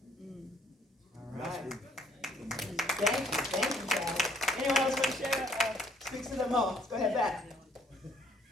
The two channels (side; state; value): both; normal; correlation 0.64